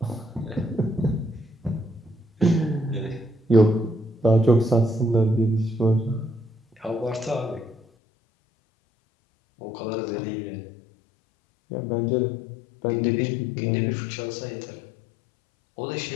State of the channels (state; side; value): drops out; right; at 7.8 s